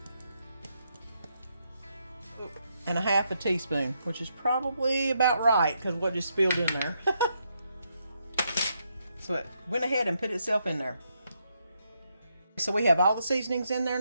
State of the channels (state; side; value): inverted; both; correlation -0.78